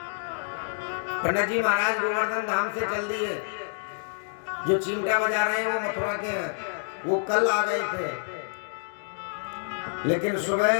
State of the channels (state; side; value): silent; right; digital silence